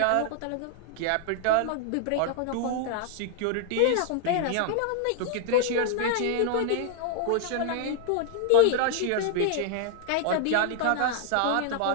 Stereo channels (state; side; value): different; both; correlation -0.01